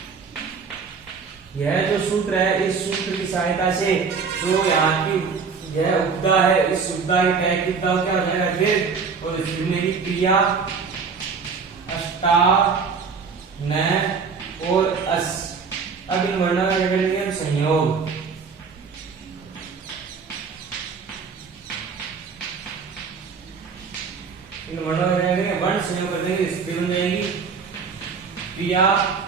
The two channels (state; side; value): quieter; left; 5.5 dB